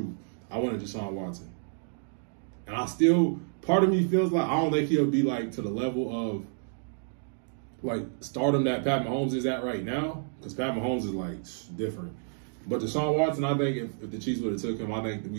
I wanted Deshaun Watson. And I still, part of me feels like I don't think he'll be like to the level of like stardom that Pat Mahomes is at right now, because Pat Mahomes is like different. But Deshaun Watson, I think if the Chiefs would have took him, I think that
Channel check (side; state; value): left; silent; digital silence